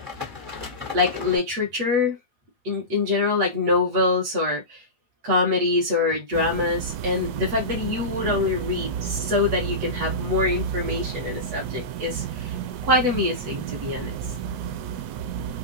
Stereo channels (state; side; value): late; left; 8.2 ms